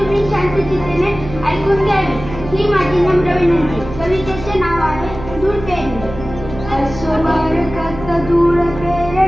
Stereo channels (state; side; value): noise; right; hum, 12 dB below the sound